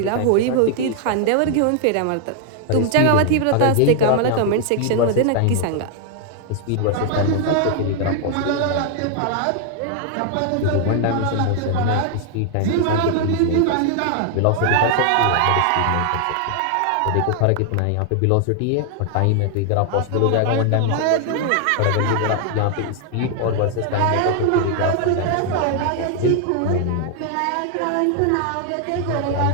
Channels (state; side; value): different; both; correlation 0.00